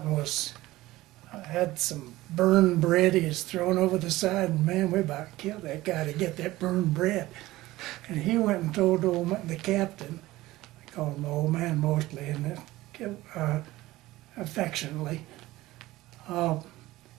and had some burned bread he was throwing over the side, and man, we about killed that guy to get that burned bread. And he went and told the captain, I call him the old man mostly, and affectionately,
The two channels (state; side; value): quieter; left; 17.7 dB